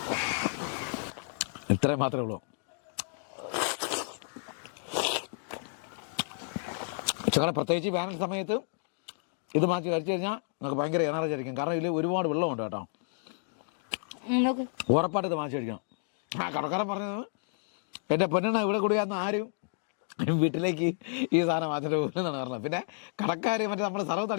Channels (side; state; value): right; silent; digital silence